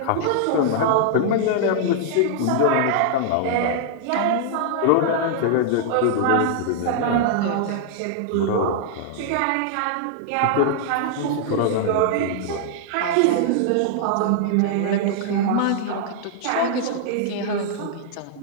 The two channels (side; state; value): both; different; correlation -0.01